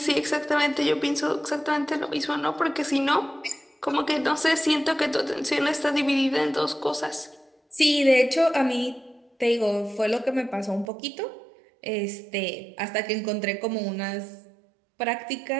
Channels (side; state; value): left; drops out; at 10.9 s